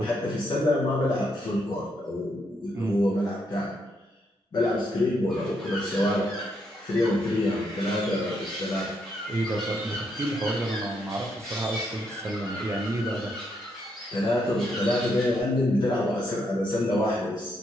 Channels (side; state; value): both; normal; correlation 0.77